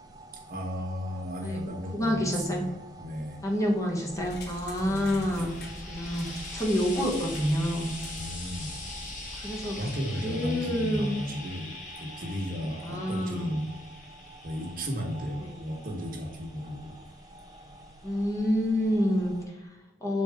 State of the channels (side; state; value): both; normal; correlation 0.78